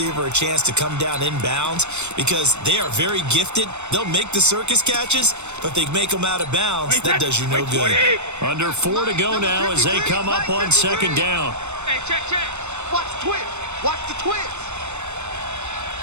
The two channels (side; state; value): left; late; 0.82 ms